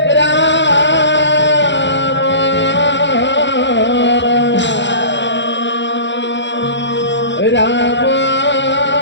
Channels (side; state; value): right; late; 0.52 ms